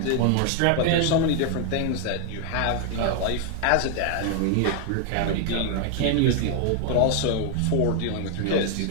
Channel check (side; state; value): both; different; correlation 0.00